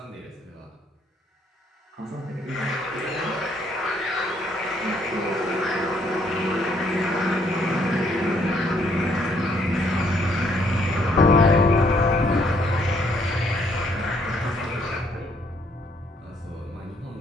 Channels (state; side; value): normal; both; correlation 0.68